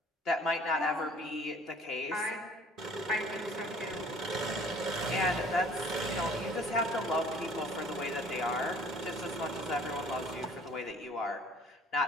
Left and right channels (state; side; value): normal; both; correlation 0.53